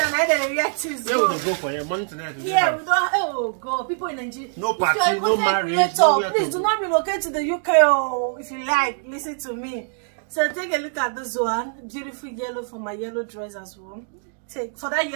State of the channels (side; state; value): left; silent; 63 dB below the other